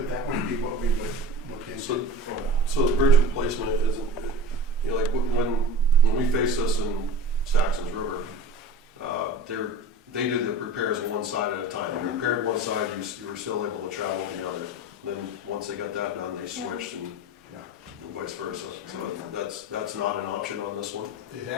would be what we would look into. so the bridge replacement isn't, like when we faced this in Saxon's River, they did the repairs on one side at a time. They repaired one side, you were still able to travel the other. Then once they got that done, they switched and vice versa. So that's not an option on this one. It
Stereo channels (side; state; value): both; normal; correlation 0.35